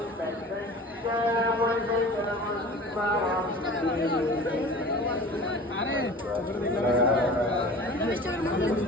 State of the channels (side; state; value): both; normal; correlation 0.40